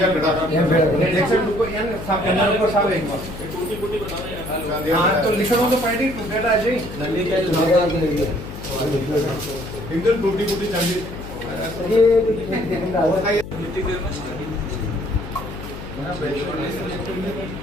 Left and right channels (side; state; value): left; noise; hum, 11 dB below the sound